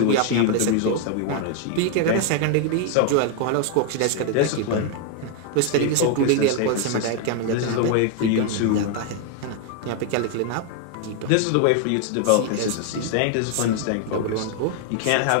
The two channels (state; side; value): different; both; correlation 0.00